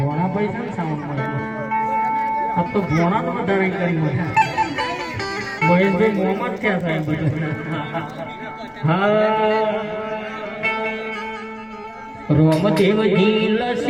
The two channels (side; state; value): left; noise; rumble, 29 dB below the sound